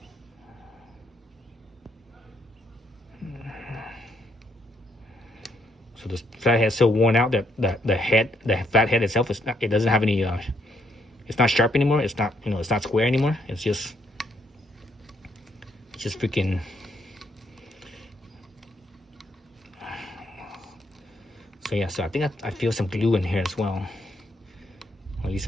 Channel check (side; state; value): both; normal; correlation 0.73